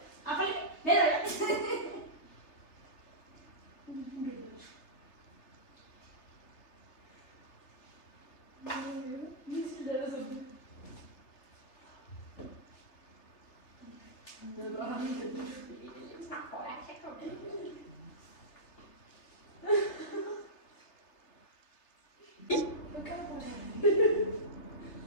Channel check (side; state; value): right; late; 3.3 ms